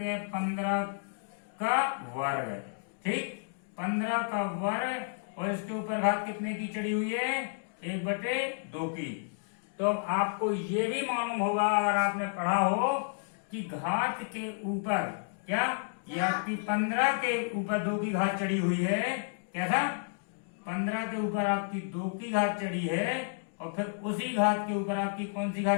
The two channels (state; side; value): silent; right; digital silence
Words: हैं, 15 का वर्ग। ठीक, 15 का वर्ग, और इसके ऊपर घात कितने की चढ़ी हुई है, 1/2 की। तो आपको ये भी मालूम होगा अगर आपने पढ़ा हो कि घात के ऊपर क्या, ये आपकी 15 के ऊपर 2 की घात चढ़ी हुई है। कैसा, 15 के ऊपर आपकी 2 की घात चढ़ी है, और फिर उसी घात के ऊपर आपकी कौन सी